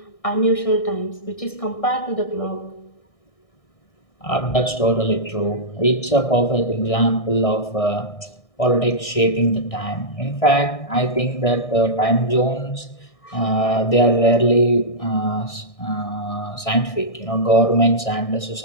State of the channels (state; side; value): late; right; 1.6 ms